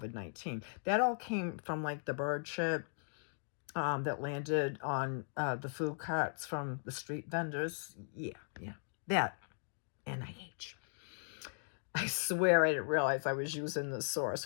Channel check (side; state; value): right; silent; digital silence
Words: That all came from like the bird shit that landed on the food carts from the street vendors. Yeah, that NIH. I swear I didn't realize I was using the